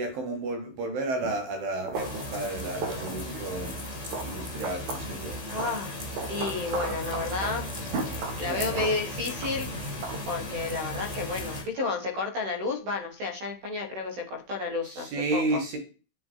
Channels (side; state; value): left; late; 16 ms